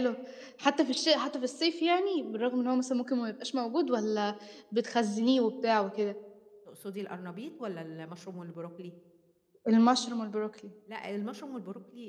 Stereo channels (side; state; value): both; identical; correlation 1.00